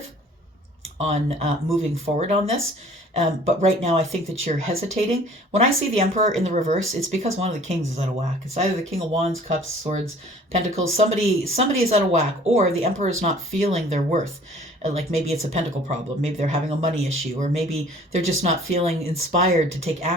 on moving forward on this. But right now, I think that you're hesitating. When I see the Emperor in the reverse, it's because one of the kings is out of whack. It's either the King of Wands, Cups, Swords, Pentacles. Somebody is out of whack, or the Emperor is not feeling their worth. Like maybe it's a pentacle problem. Maybe they're having a money issue, or maybe they're just not feeling inspired to take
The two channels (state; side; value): normal; both; correlation 0.51